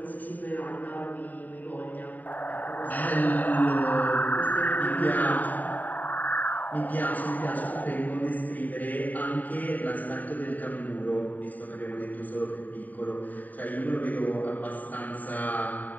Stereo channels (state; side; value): late; right; 0.083 ms